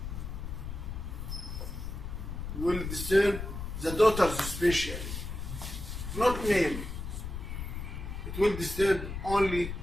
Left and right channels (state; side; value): noise; left; rumble, 6 dB below the sound